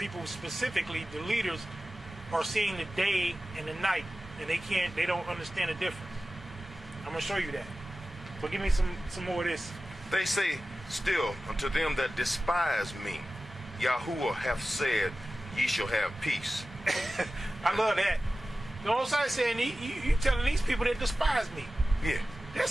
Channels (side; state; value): both; normal; correlation 0.95